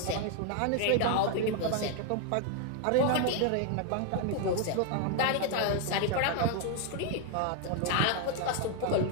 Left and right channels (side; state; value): both; different; correlation 0.01